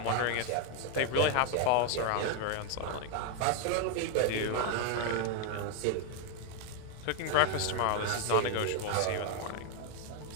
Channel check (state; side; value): different; both; correlation 0.00